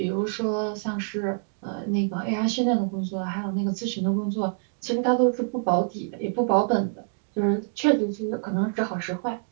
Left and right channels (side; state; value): left; silent; digital silence